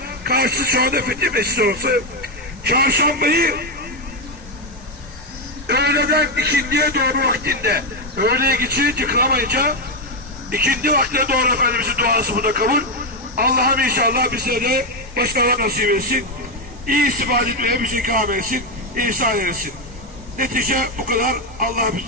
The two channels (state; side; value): normal; both; correlation 0.06